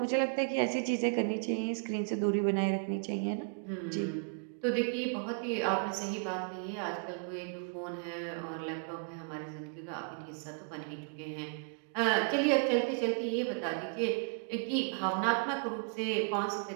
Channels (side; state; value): left; quieter; 39.8 dB